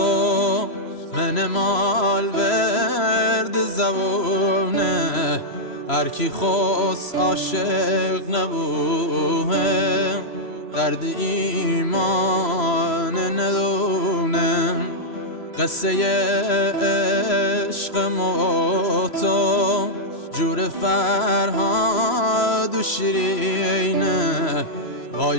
من مال ورد زبونه هر کی خواست عاشق نبوه درد ایمان ندونه قصه عشق ما و تو جور فرهاد و شیرینه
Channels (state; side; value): late; right; 3.0 ms